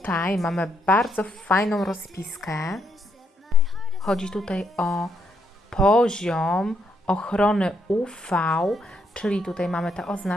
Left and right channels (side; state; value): both; normal; correlation 0.76